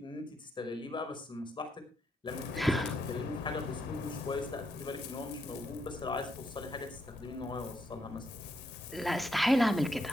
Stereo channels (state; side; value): normal; both; correlation 0.78